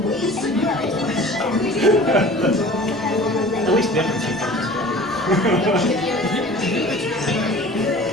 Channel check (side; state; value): both; normal; correlation 0.43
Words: At least different Chief.